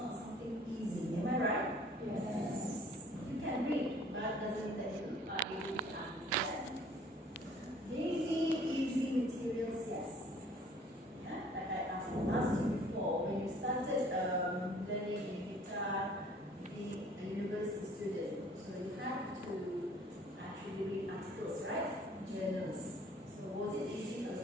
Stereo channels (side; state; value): both; normal; correlation 0.55